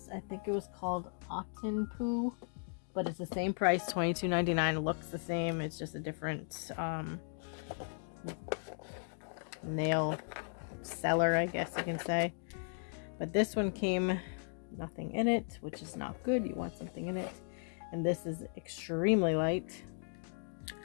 I think it was called Otten Poo. But it's the same price, $22.99. It looks the same. It's just a different nail seller, I guess you can say. But this one came nothing in it, which is not good. You want something in it. And this is extremely light.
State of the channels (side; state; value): right; silent; 53 dB below the other